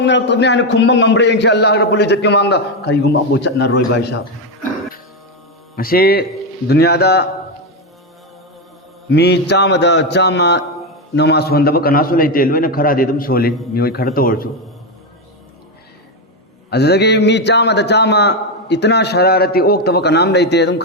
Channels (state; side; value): normal; both; correlation 0.08